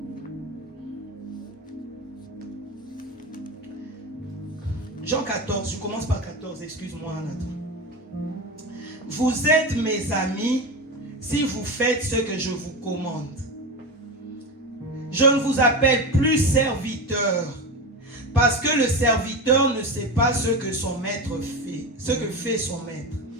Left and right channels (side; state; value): both; normal; correlation 0.23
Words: Jean 14, je commence par 14, excuse-moi Nathan. Vous êtes mes amis si vous faites ce que je vous commande. Je ne vous appelle plus serviteur, parce que le serviteur ne sait pas ce que son maître fait, ce que fait son maître.